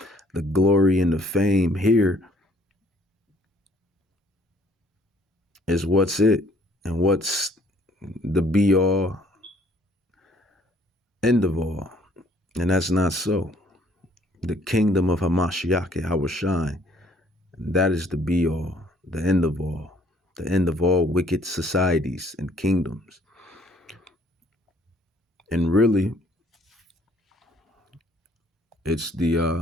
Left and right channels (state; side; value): normal; both; correlation 0.62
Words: the glory and the fame here is what's it and what's the be all end of all. And that's not so. The kingdom of Hamashiach, Hawashai, that is the be all, the end of all wicked societies and kingdoms. And really, it's